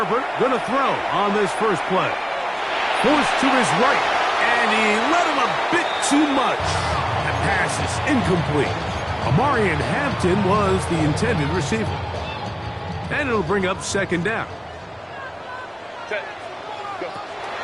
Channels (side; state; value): both; identical; correlation 1.00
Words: gonna throw on this first play. Forced to his right, and he let him a bit too much. That pass is incomplete. Amarian Hampton was the intended receiver. And it'll bring up 2nd down.